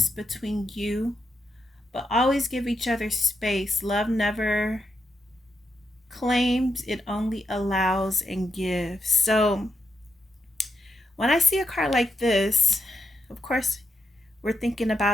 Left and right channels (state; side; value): normal; both; correlation 0.83